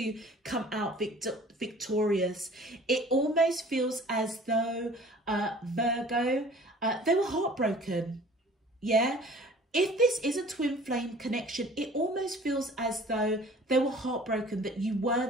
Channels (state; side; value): normal; both; correlation 0.48